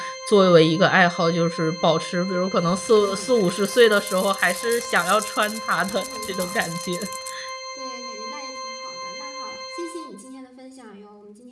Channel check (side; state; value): both; identical; correlation 1.00